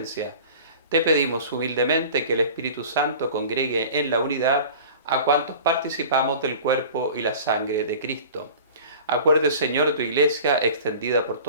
Te pedimos humildemente que el Espíritu Santo congregue en la unidad a cuantos participamos del cuerpo y la sangre de Cristo. Acuerde, Señor, tu Iglesia extendida por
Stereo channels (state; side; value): inverted; both; correlation -0.41